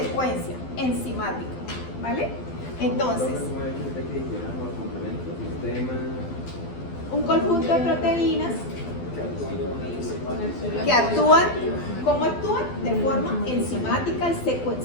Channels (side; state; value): right; late; 12 ms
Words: enzimática, ¿vale? Entonces, un conjunto de proteínas que actúan, ¿cómo actúan? De forma enzimática y